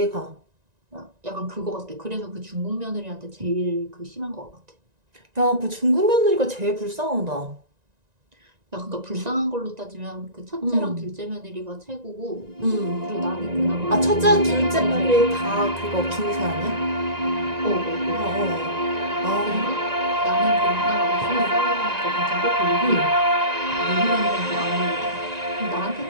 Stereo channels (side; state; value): left; late; 1.9 ms